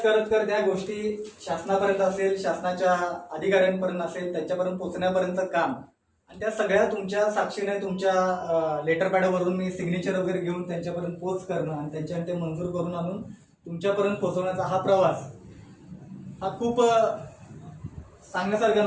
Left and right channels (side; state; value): both; identical; correlation 1.00